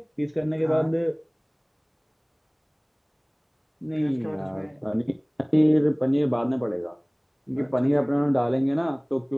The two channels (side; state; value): both; identical; correlation 1.00